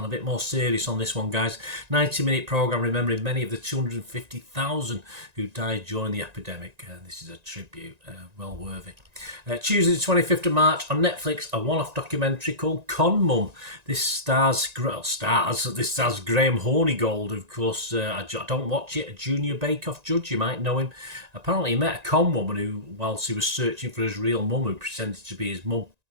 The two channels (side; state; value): left; late; 1.9 ms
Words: A bit more serious on this one, guys. 90-minute programme remembering many of the 250,000 who died during the epidemic. This is a tribute, well worthy. Tuesday the 25th of March on Netflix, a one-off documentary called Con Mum. This stars Graham Hornigold, of course. I don't watch it, a junior bake-off judge, you might know him. Apparently he met a con woman who, whilst he was searching for his real mum, who pretended to be his mum.